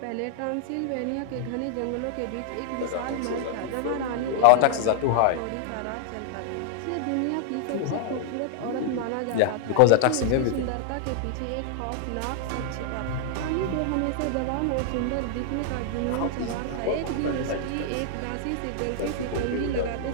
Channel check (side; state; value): both; different; correlation -0.01